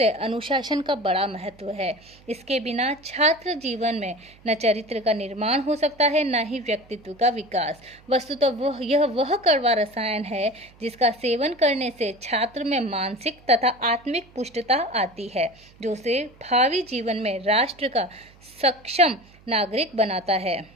अनुशासन का बड़ा महत्व है। इसके बिना छात्र जीवन में न चरित्र का निर्माण हो सकता है, न ही व्यक्तित्व का विकास। वस्तुतः यह वह कड़वा रसायन है जिसका सेवन करने से छात्र में मानसिक तथा आत्मिक पुष्टता आती है, जो उसे भावी जीवन में राष्ट्र का सक्षम नागरिक बनाता है,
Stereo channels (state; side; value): noise; right; hum, 26 dB below the sound